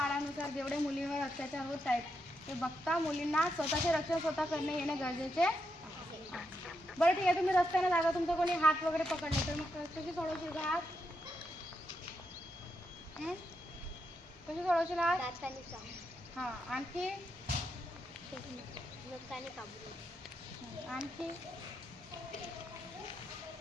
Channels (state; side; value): normal; both; correlation 0.83